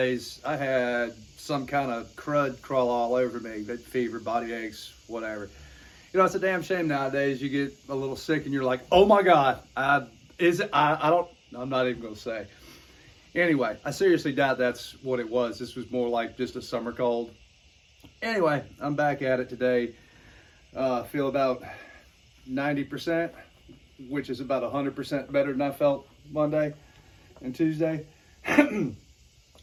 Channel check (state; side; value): identical; both; correlation 1.00